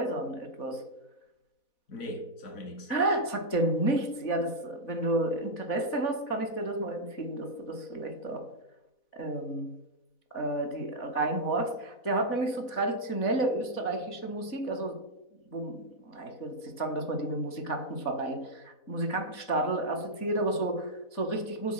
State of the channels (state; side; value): late; right; 4.1 ms